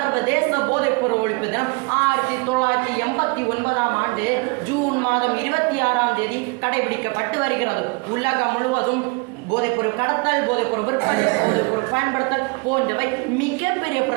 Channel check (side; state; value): left; quieter; 29.5 dB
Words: போதைப்பொருள் ஒழிப்பு தினம் 1989 ஆண்டு ஜூன் மாதம் 26ஆம் தேதி கடைபிடிக்கப்பட்டு வருகிறது. உலகம் முழுவதும் போதைப்பொருள் கடத்தல், போதைப்பொருள் விற்பனை, போதைப்பொருள் பயன்படுத்தல் போன்றவை மிகப்பெரிய